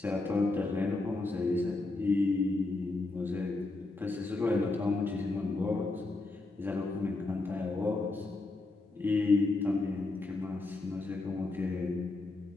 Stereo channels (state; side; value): quieter; right; 3.2 dB